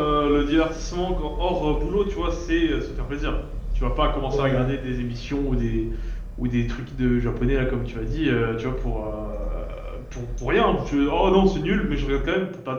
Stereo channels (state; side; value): identical; both; correlation 1.00